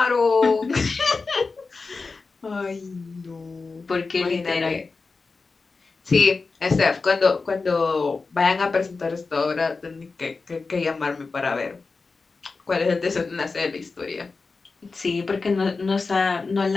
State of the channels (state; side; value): quieter; right; 4.2 dB